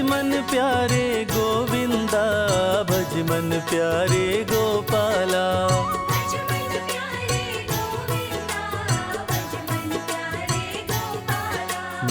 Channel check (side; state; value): both; identical; correlation 1.00